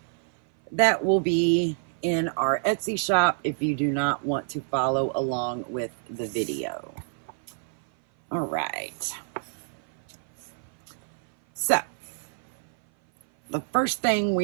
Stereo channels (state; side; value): silent; left; 56 dB below the other